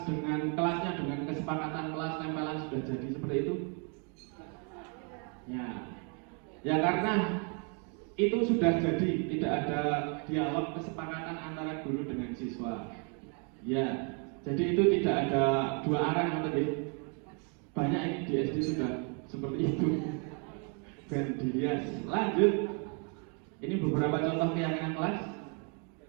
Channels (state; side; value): quieter; left; 38.0 dB